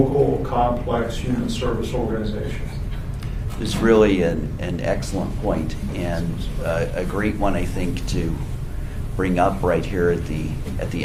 complex human service organizations. It's really an excellent point, and a great one, I think, to bring up right here at the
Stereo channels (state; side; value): identical; both; correlation 1.00